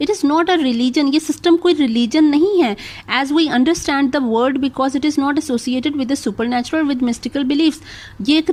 It is not a religion, ये सिस्टम कोई रिलीजन नहीं है as we understand the word, because it is not associated with the supernatural with mystical believes. ये एक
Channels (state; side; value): identical; both; correlation 1.00